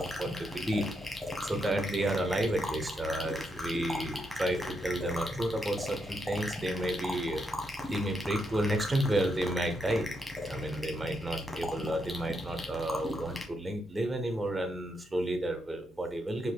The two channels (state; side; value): normal; both; correlation 0.80